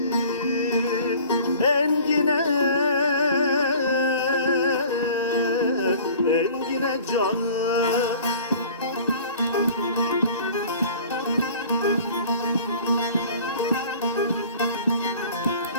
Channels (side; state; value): both; inverted; correlation -0.47